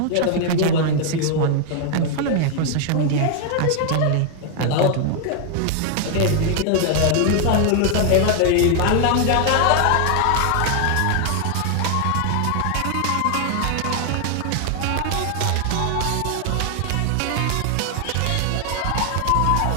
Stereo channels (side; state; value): both; different; correlation 0.00